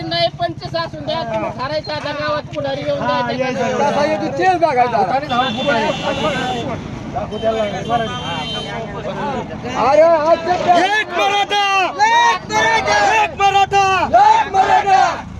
नाही 25 असून द्या. तुम्ही ठरायचं आता गावात पुढारी येऊन द्यायचं. कसा येतो तेच बघायचं. अरे आजच्या एक मराठा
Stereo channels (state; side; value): identical; both; correlation 1.00